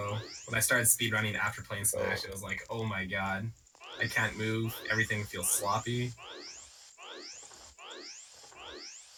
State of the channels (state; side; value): identical; both; correlation 1.00